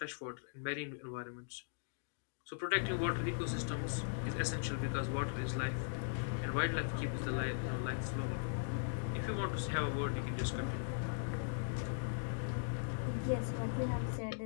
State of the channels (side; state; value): right; silent; digital silence